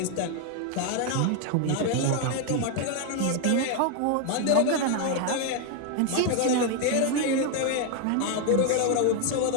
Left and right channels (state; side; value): different; both; correlation 0.01